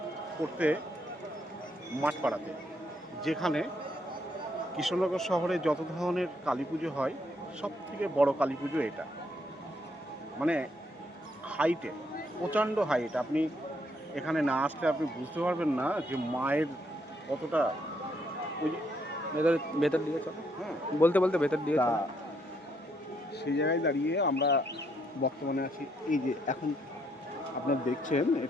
করতে মাঠপাড়াতে, যেখানে কৃষ্ণনগর শহরে যত ধরনের কালী পুজো হয় সবথেকে বড় কালী পুজো এটা। মানে হাইটে, প্রচণ্ড হাইট। আপনি এখানে না আসলে আপনি বুঝতে পারবেন না যে মায়ের কতটা ওই যে ভেতর ভেতর দিকে চলো। হ্যাঁ। বলতে বলতে ভেতর দিকে তা চলো। সেই জায়গায় দাঁড়িয়ে আমরা বর্তমানে আছি। এই যে এখন আপনারা দেখছেন,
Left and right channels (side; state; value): both; normal; correlation 0.73